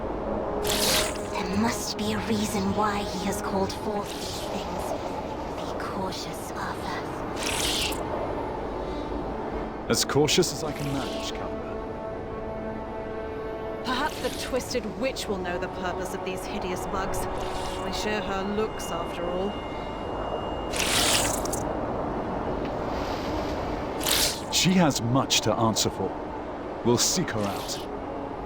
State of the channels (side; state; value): both; identical; correlation 1.00